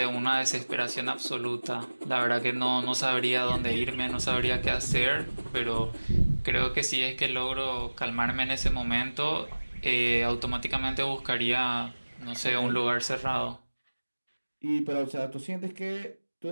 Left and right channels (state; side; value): inverted; both; correlation -1.00